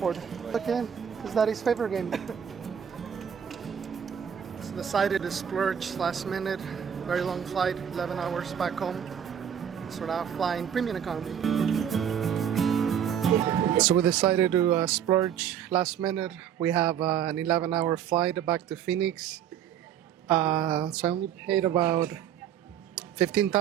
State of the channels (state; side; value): quieter; left; 8.9 dB